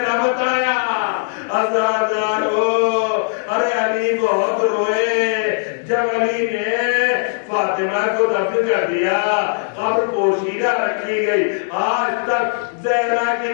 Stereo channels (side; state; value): right; silent; digital silence